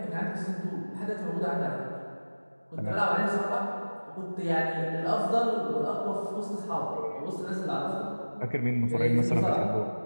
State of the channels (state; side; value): inverted; both; correlation -1.00